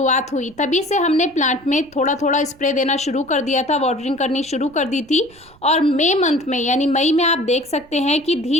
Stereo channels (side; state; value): right; noise; rumble, 27 dB below the sound